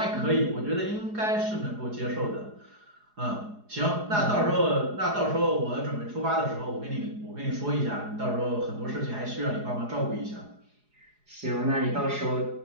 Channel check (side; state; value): left; late; 4.8 ms